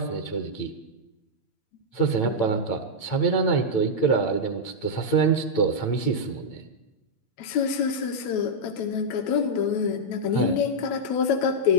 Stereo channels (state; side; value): late; right; 9.0 ms